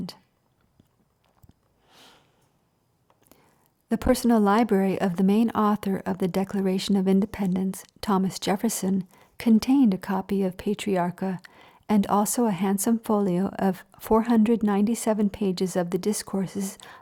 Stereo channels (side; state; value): both; identical; correlation 1.00